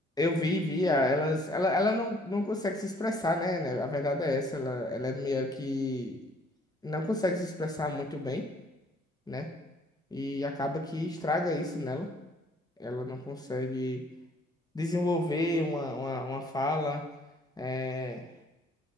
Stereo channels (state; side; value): normal; both; correlation 0.60